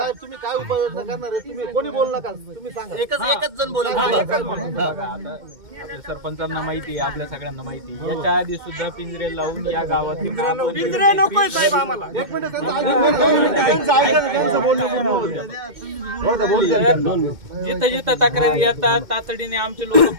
तुम्ही काय उपाययोजना करणार आहे? तुम्ही कोणी बोलू नका. तुम्ही सांगा. एकच जण बोला. आपल्या सरपंचांना माहिती आहे, आपल्या सगळ्यांना माहिती आहे. याच्या आधी सुद्धा पिंजरे लावून या गावात पिंजरे नकोय साहेब आम्हाला. एक मिनिट जिथं जिथं तक्रारी येतात तातडीने आमचे लोक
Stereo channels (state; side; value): late; left; 2.1 ms